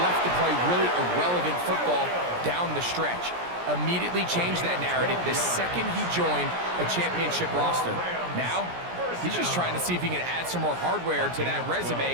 left to play really irrelevant football down the stretch. Immediately changed that narrative the second he joined a championship roster. Now, he's just trying to see if he can add some more hardware to that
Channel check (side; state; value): left; late; 17 ms